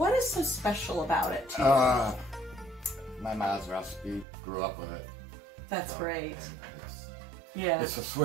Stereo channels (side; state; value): left; drops out; at 4.2 s